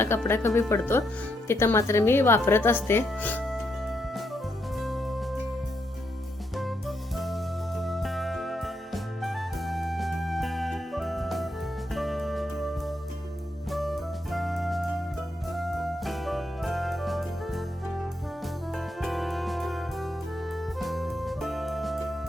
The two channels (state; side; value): normal; both; correlation 0.79